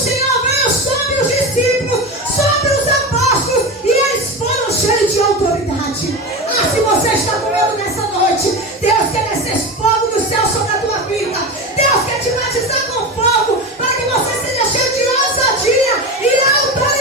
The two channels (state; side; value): normal; both; correlation 0.23